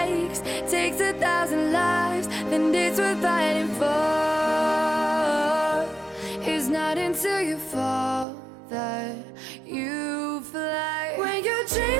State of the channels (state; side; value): drops out; left; at 8.2 s